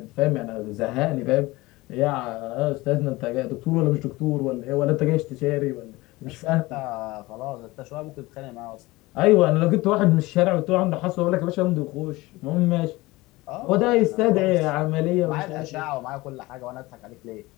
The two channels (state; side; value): quieter; right; 20.7 dB